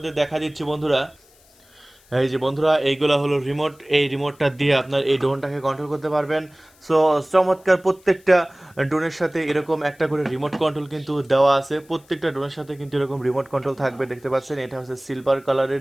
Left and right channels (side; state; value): left; noise; hiss, 30 dB below the sound